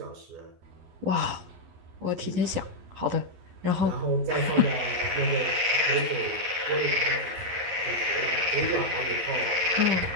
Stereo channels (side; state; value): left; late; 11 ms